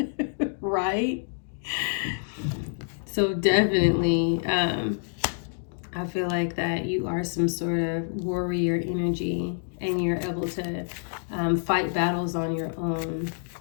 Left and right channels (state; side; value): silent; right; digital silence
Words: Right? So definitely, I feel like that you are some sort of warrior energy and you're able to fight battles on your own.